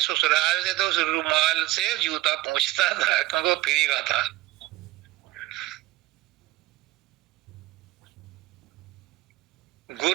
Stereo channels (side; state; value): left; quieter; 17.6 dB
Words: से, तो उस रुमाल से जूता पूछता था क्योंकि वो फ्री का था।